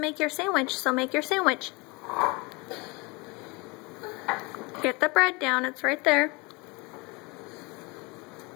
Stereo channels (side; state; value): right; quieter; 26.9 dB